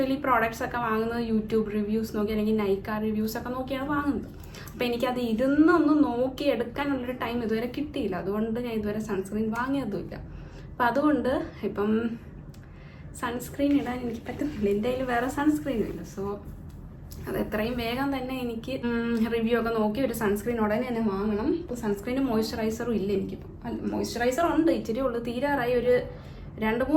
പ്രോഡക്റ്റ്സ് ഒക്കെ വാങ്ങുന്നത് യൂട്യൂബ് റിവ്യൂസ് നോക്കി അല്ലെങ്കിൽ നൈക്ക റിവ്യൂസ് ഒക്കെ നോക്കിയാണ് വാങ്ങുന്നത്. അപ്പോൾ എനിക്കത് ഇരുന്നൊന്ന് നോക്കി എടുക്കാനുള്ളൊരു ടൈം ഇതുവരെ കിട്ടിയില്ല. അതുകൊണ്ട് ഞാൻ ഇതുവരെ സൺസ്ക്രീൻ വാങ്ങിയതുമില്ല. അപ്പം അതുകൊണ്ട് ഇപ്പം സൺസ്ക്രീൻ ഇടാൻ എനിക്ക് പറ്റുന്നില്ല. എൻ്റെ കയ്യിൽ വേറെ സൺസ്ക്രീനും ഇല്ല. സോ അത് എത്രയും വേഗം തന്നെ എനിക്ക് റിവ്യൂ ഒക്കെ നോക്കി ഒരു സൺസ്ക്രീൻ ഉടനെ തന്നെ വാങ്ങണം. ഇപ്പോൾ സൺസ്ക്രീനും മോയ്സ്ചറൈസറും ഇല്ല എനിക്കിപ്പോൾ. മോയ്സ്ചറൈസർ ഉണ്ട്, ഇച്ചിരി ഉള്ളു, തീരാറായി. ഒരു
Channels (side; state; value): both; identical; correlation 1.00